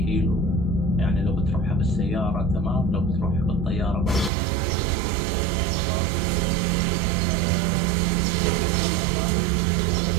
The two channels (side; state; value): left; drops out; at 4.3 s